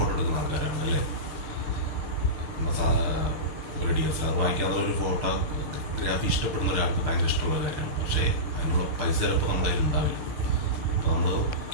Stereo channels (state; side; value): late; left; 6.7 ms